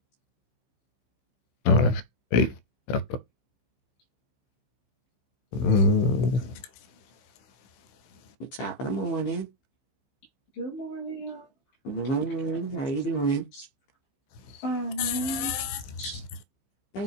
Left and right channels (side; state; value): right; late; 16 ms